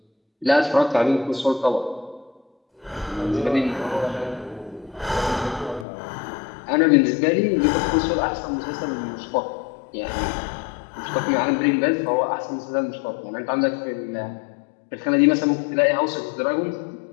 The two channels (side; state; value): right; drops out; at 5.9 s